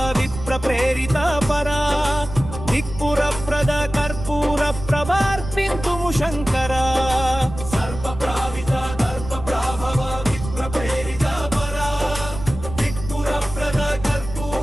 విప్ర ప్రేరిత పరా దిక్పుర ప్రద కర్పూర ప్రభార్పింతుము శంకర సర్ప ప్రావిత దర్ప ప్రాభవ విప్ర ప్రేరిత పరా దిక్పుర ప్రద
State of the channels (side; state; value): right; noise; rumble, 10 dB below the sound